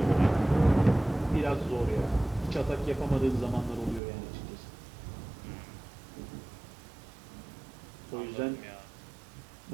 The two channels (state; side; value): drops out; left; at 4.0 s